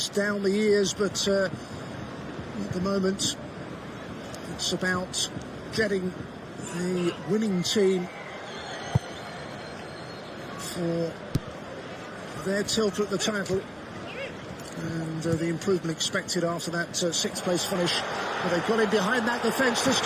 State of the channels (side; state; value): both; identical; correlation 1.00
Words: down the years, but at the moment it's about getting the winning team for their tilt at the title, and the improvement expected after that 6th place finish. But they've got in behind that defence. This